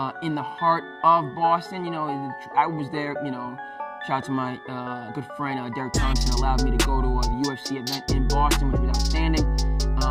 in the heart of Boston. I was there, shout out to my good friend Derek Thompson, allowed me to go to the UFC event in Boston, which was outstanding.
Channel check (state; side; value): identical; both; correlation 1.00